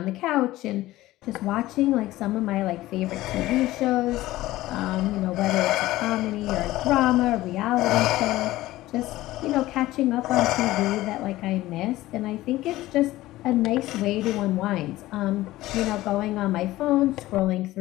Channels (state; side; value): quieter; right; 16.7 dB